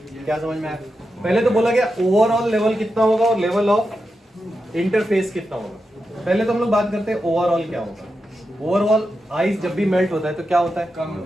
क्या समझ में आया? पहले तो बोला गया ओवरऑल लेवल कितना होगा और लेवल ऑफ इंटरफेस कितना होगा। पहले तो हम लोग बात करते हैं ओवरऑल क्या होगा। ओवरऑल आइस जब भी मेल्ट होता है तो क्या होता है?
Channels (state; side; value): normal; both; correlation 0.89